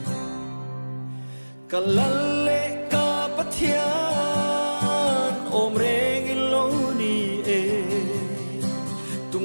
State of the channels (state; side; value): inverted; both; correlation -1.00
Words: kalalle ka pathian om reng iloni e